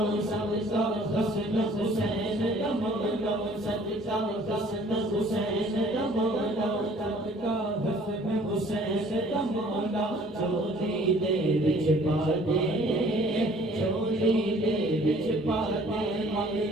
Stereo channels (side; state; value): both; normal; correlation 0.55